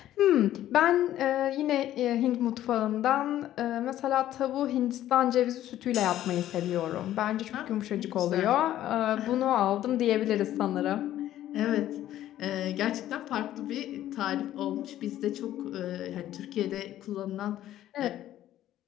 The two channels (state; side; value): quieter; right; 12.8 dB